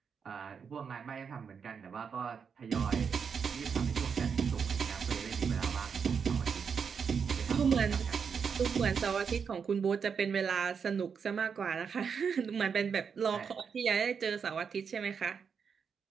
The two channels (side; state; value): left; quieter; 6.4 dB